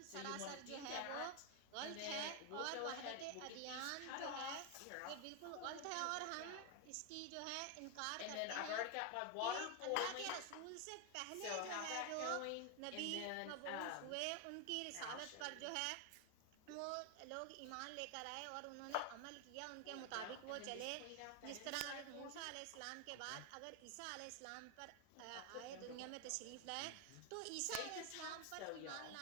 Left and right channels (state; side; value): different; both; correlation 0.01